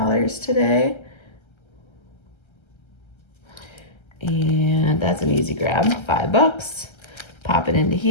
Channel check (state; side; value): late; right; 1.3 ms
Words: today. And that's an easy grab, $5. Pop it into